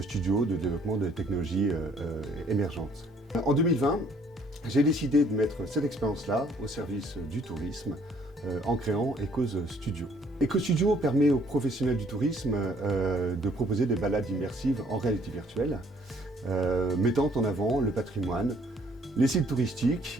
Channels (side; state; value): both; normal; correlation 0.62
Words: studios de développement de technologies émergentes. En 2020, j'ai décidé de mettre cette expérience-là au service du tourisme en créant Ecose Studio. Ecose Studio permet aux professionnels du tourisme de proposer des balades immersives en réalité virtuelle, mettant en avant le patrimoine, les sites